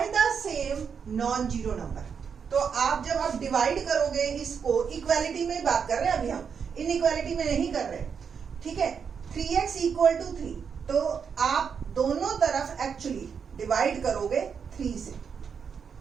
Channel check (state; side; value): quieter; left; 6.6 dB